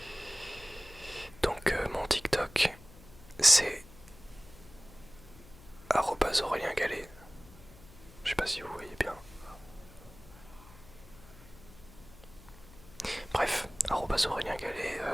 Donc mon TikTok c'est Aurélien Gallet. Je sais pas si vous voyez bien. Bref, Aurélien Gallet,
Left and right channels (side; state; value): left; noise; hum, 20 dB below the sound